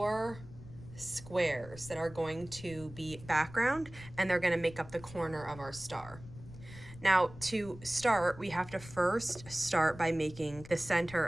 squares that are going to be background, and they're going to make up the corner of our star. Now, to start, we have to first start by making the center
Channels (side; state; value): left; noise; rumble, 17 dB below the sound